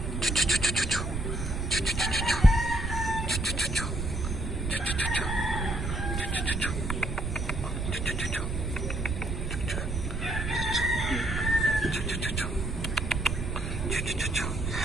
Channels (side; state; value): right; noise; rumble, 2 dB below the sound